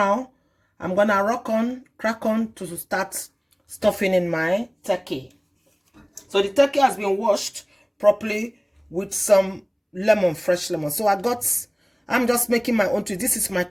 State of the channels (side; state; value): both; identical; correlation 1.00